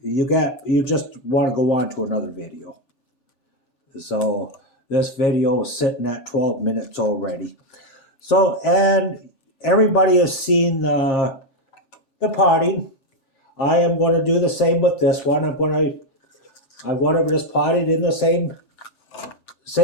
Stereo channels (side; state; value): right; late; 3.4 ms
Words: just want to go on to another video. So this video is sitting at 12 minutes already. So, and everybody has seen the potting. I am going to do the same with this one. I'm going to just pot it in the